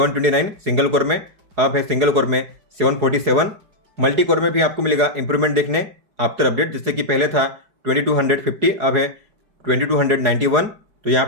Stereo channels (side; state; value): left; late; 4.8 ms